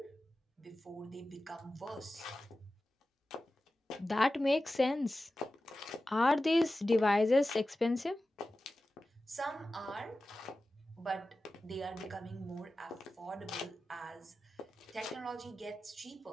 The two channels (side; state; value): both; normal; correlation 0.94